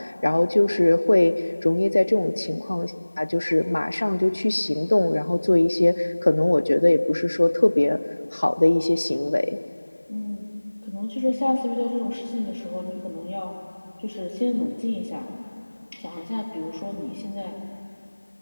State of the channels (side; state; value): both; inverted; correlation -1.00